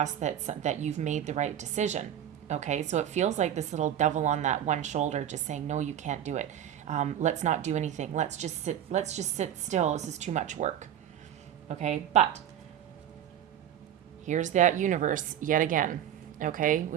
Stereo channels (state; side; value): quieter; left; 10.4 dB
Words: that you've made the right decision, okay? So it feels like this little devil on that one shoulder just saying, no, you can't do it. Let's not do anything. Let's just sit still. This is too much work, okay? But here's that universe yet again, okay?